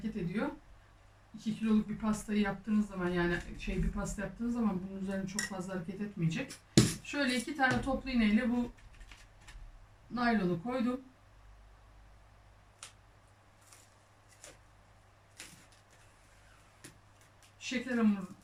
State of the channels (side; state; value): both; identical; correlation 1.00